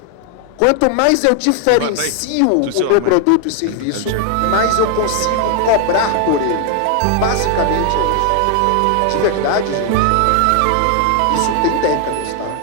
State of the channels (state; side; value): different; both; correlation 0.00